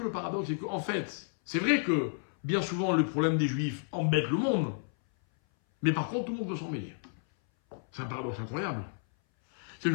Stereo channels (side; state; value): right; silent; 57 dB below the other